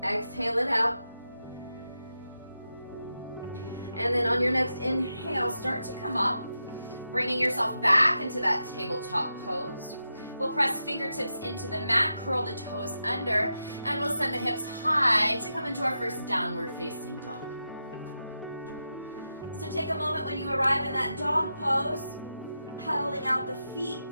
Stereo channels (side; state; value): both; inverted; correlation -0.88